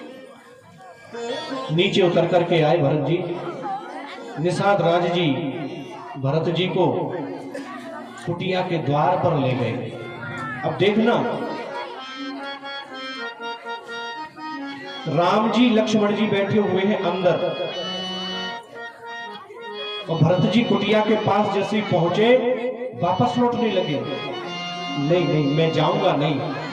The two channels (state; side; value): identical; both; correlation 1.00